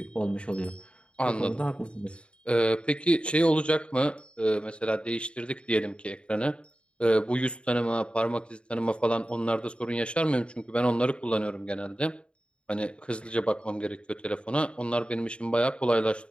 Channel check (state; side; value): late; right; 0.057 ms